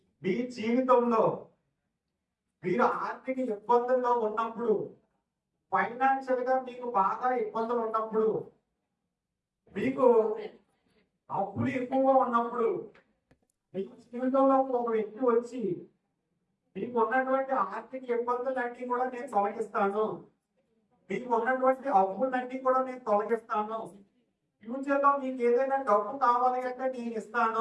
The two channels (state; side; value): identical; both; correlation 1.00